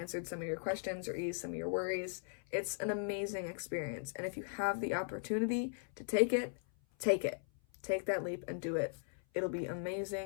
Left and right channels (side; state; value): right; silent; 52 dB below the other